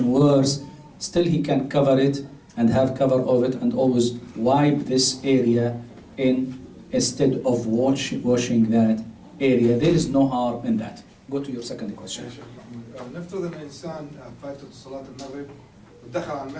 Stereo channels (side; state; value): both; identical; correlation 1.00